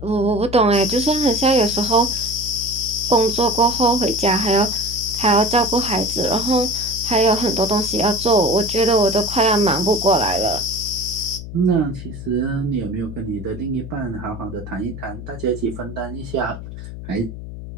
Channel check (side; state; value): left; noise; hum, 11 dB below the sound